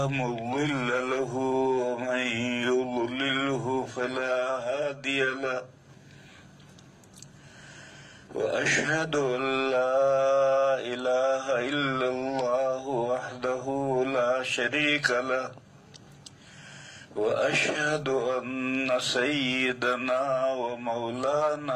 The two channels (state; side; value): identical; both; correlation 1.00